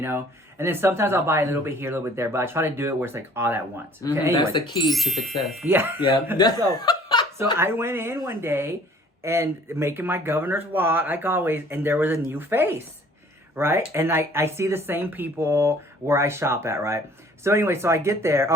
know. And then sometimes I'll buy a little bit here, a little bit there, but I try to do it where it's like all at once. Okay? Anyway. That's the key to success. Yeah. Yeah. So I went in one day and making my Governor's Walk, like always, and there was a new face, right? And I see the same people where I shop at, right? So anyway, so I get there.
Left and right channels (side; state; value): both; normal; correlation 0.54